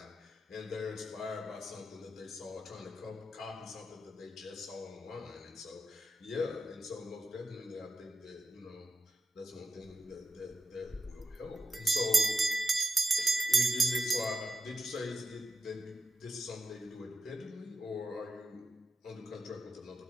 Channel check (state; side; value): normal; both; correlation 0.87